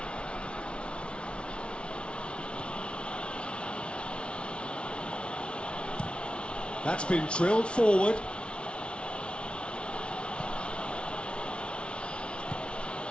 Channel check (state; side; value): late; right; 0.058 ms